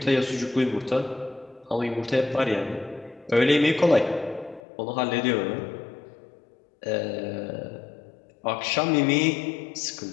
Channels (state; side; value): drops out; right; at 4.6 s